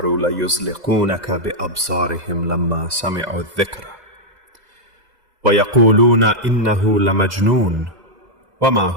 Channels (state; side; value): late; left; 2.0 ms